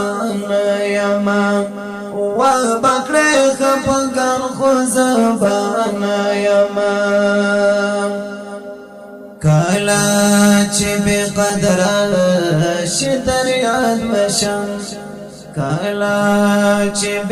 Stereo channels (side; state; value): both; identical; correlation 1.00